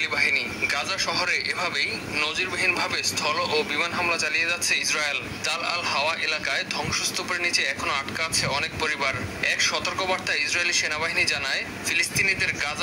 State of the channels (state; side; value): identical; both; correlation 1.00